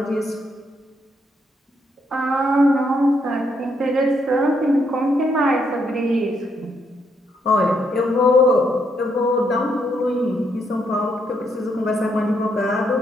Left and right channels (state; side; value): normal; both; correlation 0.75